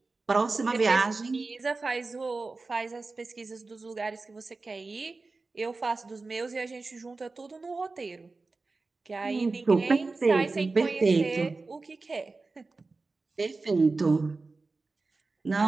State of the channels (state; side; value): quieter; left; 3.7 dB